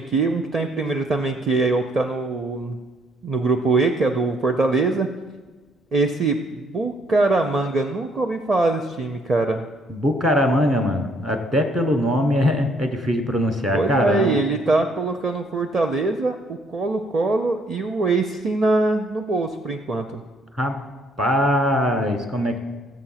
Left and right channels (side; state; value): both; normal; correlation 0.67